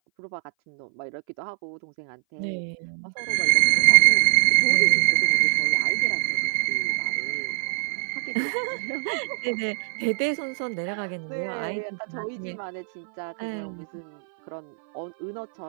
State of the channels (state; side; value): silent; left; 58 dB below the other